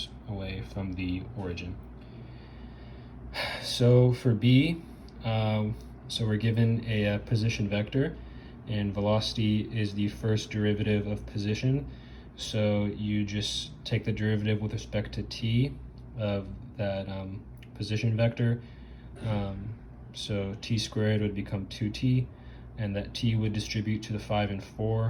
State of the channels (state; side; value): identical; both; correlation 1.00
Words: away from the origin. So for B, so we're given a position vector, and velocity is the first derivative of position. So you just take the derivative with respect to t of that position vector. So t squared would become 2t, and that t would distribute to the 5 and